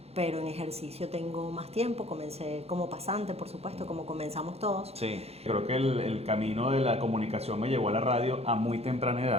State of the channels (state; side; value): late; left; 0.30 ms